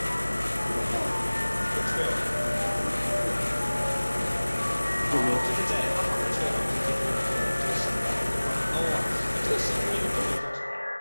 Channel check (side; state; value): both; inverted; correlation -1.00